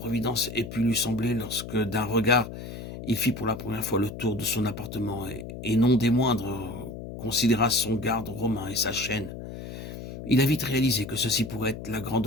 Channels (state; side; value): noise; left; hum, 10 dB below the sound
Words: ait pu lui sembler lorsque, d'un regard, il fit pour la première fois le tour de son appartement et non des moindres, considéra son garde romain et sa chaîne. Il a vite réalisé que ceci pourrait être la